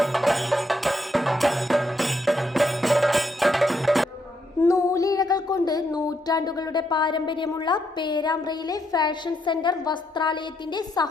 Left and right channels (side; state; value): both; normal; correlation 0.77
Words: നൂലിഴകൾ കൊണ്ട് നൂറ്റാണ്ടുകളുടെ പാരമ്പര്യമുള്ള പേരാമ്പ്രയിലെ ഫാഷൻ സെന്റർ വസ്ത്രാലയത്തിന്റെ